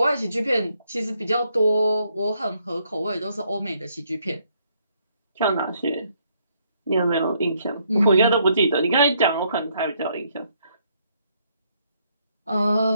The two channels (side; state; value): both; inverted; correlation -0.71